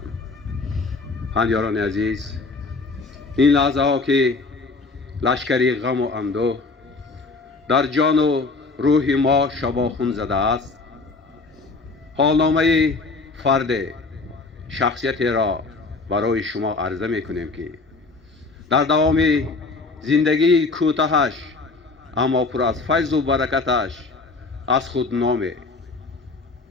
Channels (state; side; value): quieter; right; 3.8 dB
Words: هنیاران عزیز، این لحظه ها که لشکری غم و اندوه در جان و روح ما شباخون زده است، حالنامه فرد شخصیتی را برای شما عرضه می کنیم که در دوام زندگی کوتاهش اما پر از فیض و برکتش از خود نام،